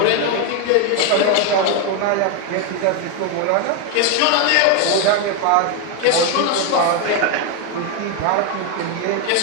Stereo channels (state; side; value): different; both; correlation 0.01